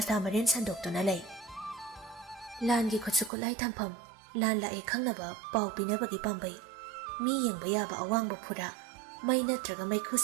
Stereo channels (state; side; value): drops out; left; at 3.3 s